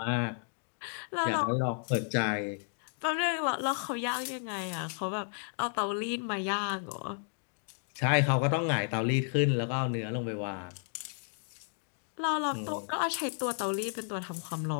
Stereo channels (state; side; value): silent; right; 56 dB below the other